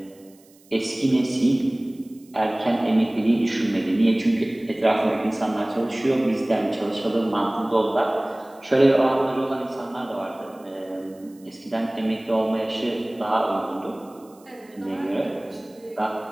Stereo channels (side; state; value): right; noise; hiss, 29 dB below the sound